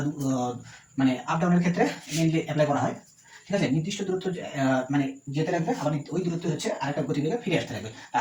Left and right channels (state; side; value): identical; both; correlation 1.00